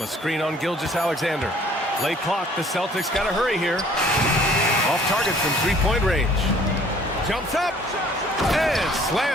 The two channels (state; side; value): normal; both; correlation 0.56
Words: a screen on Gilgeous-Alexander. Late clock. The Celtics got to hurry here. Off target from three-point range. Jumps up. And